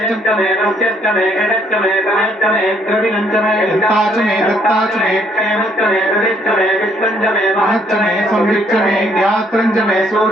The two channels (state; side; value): normal; both; correlation 0.67